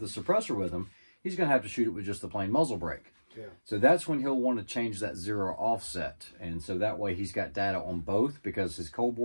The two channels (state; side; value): inverted; both; correlation -1.00